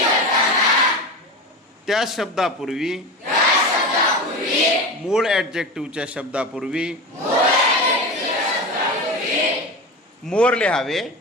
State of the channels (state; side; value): normal; both; correlation 0.25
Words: त्या शब्दापूर्वी मूळ ॲडजेक्टिव्हच्या शब्दापूर्वी मोर लिहावे